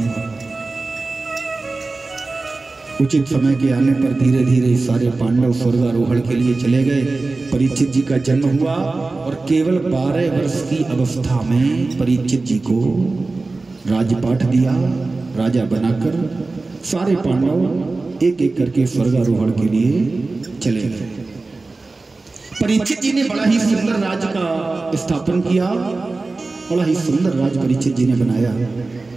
उचित समय के आने पर धीरे धीरे सारे पांडव स्वर्गारोहण के लिए चले गए। परीक्षित जी का जन्म हुआ और केवल 12 वर्ष की अवस्था में परीक्षित जी को राजपाट दिया। राजा बनाकर सारे पांडव एक एक करके स्वर्गारोहण के लिए चले गए। परीक्षित जी ने बड़ा ही सुंदर राज्य का स्थापन किया, बड़ा ही सुंदर राज्य परीक्षित जी ने बनाया।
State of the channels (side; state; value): left; quieter; 3.5 dB